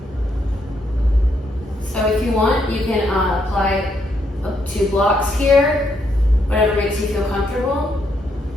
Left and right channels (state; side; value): normal; both; correlation 0.76